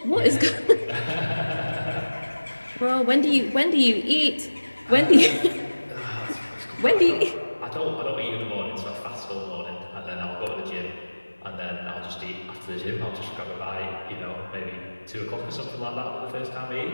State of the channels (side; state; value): both; inverted; correlation -1.00